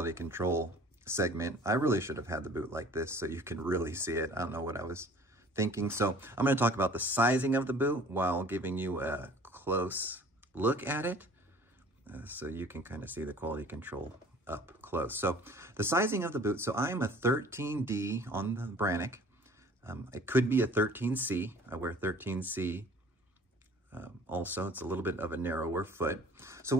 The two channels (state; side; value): normal; both; correlation 0.50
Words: control segment. I really should have had the boot like this so you can really see it. I don't know what I was thinking. So I'm going to talk about the sizing of the boot while giving you a close look at it so you can kind of see the quality control up close. So the sizing of the boot, so I'm a 13D on the Brannock. It could be a 13C. I wear 13C also. It's a little bit of a narrower foot. So